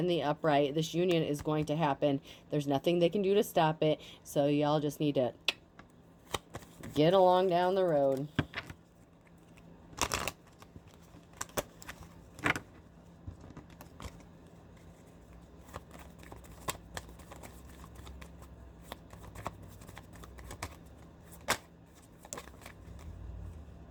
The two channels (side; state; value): both; identical; correlation 1.00